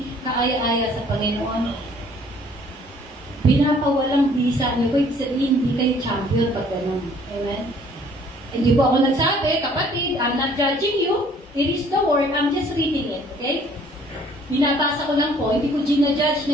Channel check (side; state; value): both; normal; correlation 0.58